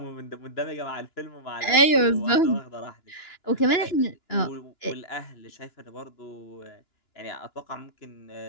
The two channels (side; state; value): right; late; 2.9 ms